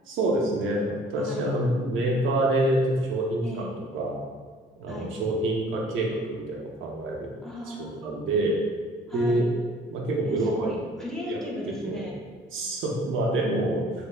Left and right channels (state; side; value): normal; both; correlation 0.53